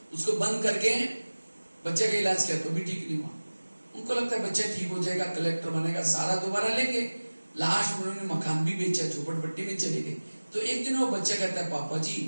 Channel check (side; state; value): both; inverted; correlation -1.00